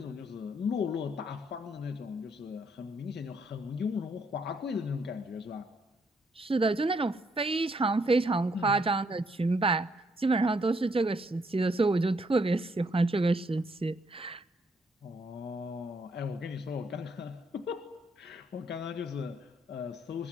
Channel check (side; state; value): both; normal; correlation 0.72